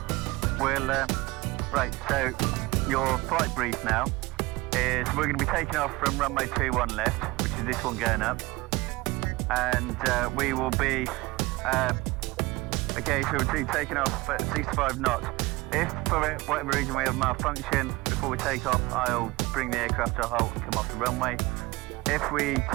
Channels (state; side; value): quieter; left; 21.7 dB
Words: right, so your flight brief now is we're going to be taking off from runway 21 left, which is this one going up, and we will be okay, so we'll be taking off at 65 knots. If for whatever reason we have malfunction before we take off, I'll bring the aircraft to a halt and come off the runway. If we